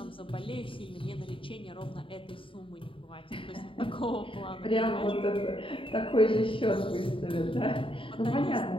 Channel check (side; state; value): right; late; 0.25 ms